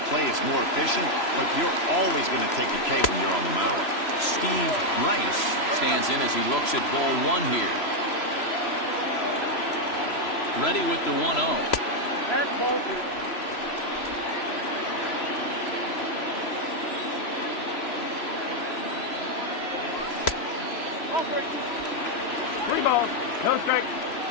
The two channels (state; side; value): late; right; 3.0 ms